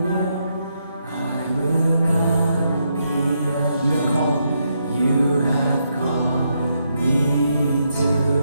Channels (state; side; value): inverted; both; correlation -0.79